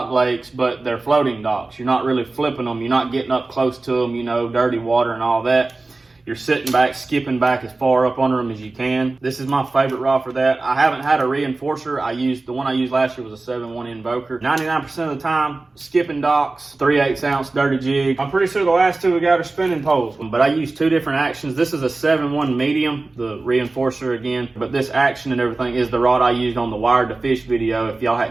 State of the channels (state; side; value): quieter; left; 3.4 dB